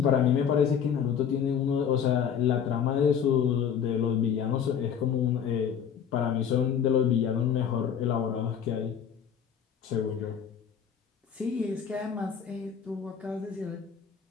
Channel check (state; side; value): quieter; right; 8.0 dB